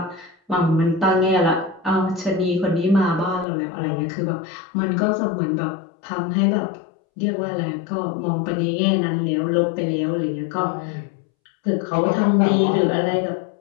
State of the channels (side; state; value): right; drops out; at 3.5 s